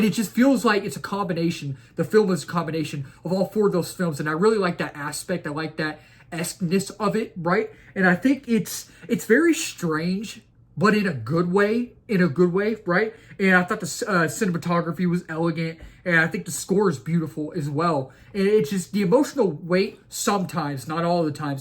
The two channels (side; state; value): both; identical; correlation 1.00